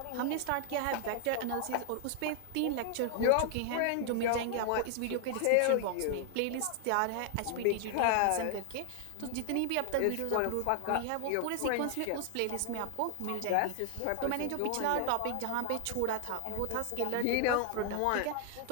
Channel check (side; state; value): both; different; correlation 0.00